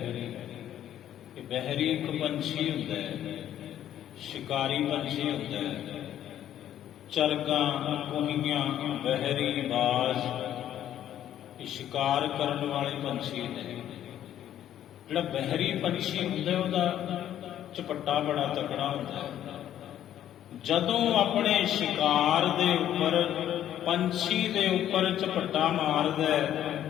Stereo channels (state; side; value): quieter; right; 11.3 dB